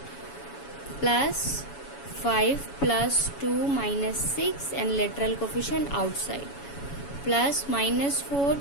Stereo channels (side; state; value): right; late; 7.1 ms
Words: Plus 5 plus 2 minus 6 and literal coefficient outside plus minus 4